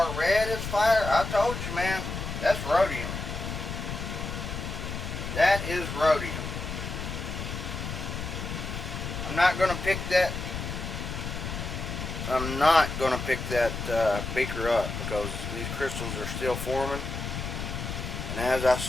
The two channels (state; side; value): noise; left; rumble, 5 dB below the sound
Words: red as fire. I told you, man. That's rhodium. That is rhodium. I'm not going to pick that. I'm not going to pick that beaker up because these crystals are still forming. And as I